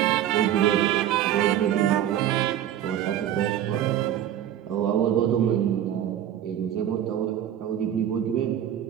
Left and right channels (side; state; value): left; quieter; 11.1 dB